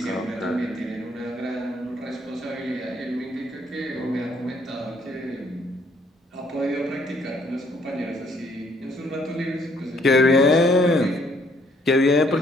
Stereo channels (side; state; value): both; normal; correlation 0.66